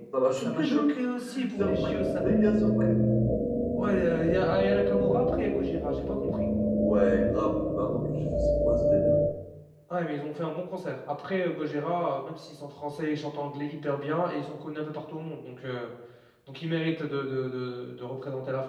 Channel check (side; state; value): both; identical; correlation 1.00